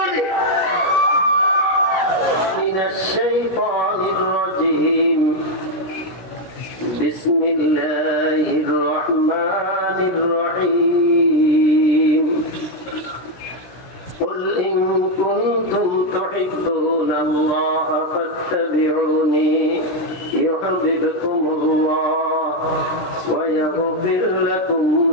بسم الله الرحمن الرحيم قل إن كنتم تحبون الله فاتبعوني يحببكم الله ويغفر لكم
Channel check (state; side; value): late; right; 16 ms